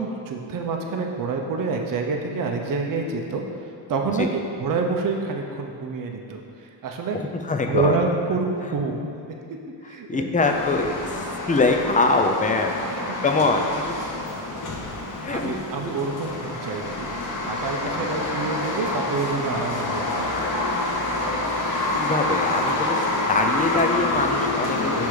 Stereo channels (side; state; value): both; normal; correlation 0.06